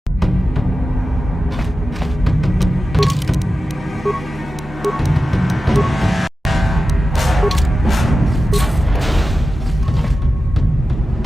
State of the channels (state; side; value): normal; both; correlation 0.93